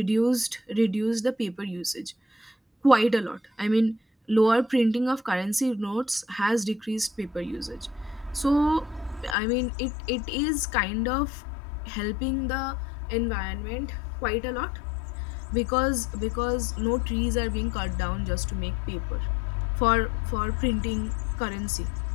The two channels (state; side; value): drops out; right; at 9.3 s